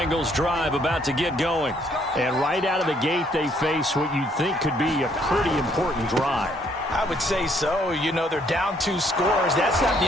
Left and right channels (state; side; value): normal; both; correlation 0.67